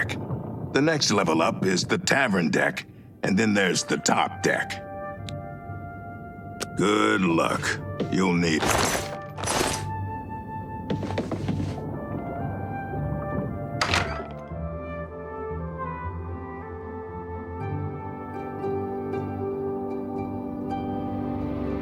The next level up is the tavern deck, and then there's the top deck. Good luck. You'll need it.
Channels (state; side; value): identical; both; correlation 1.00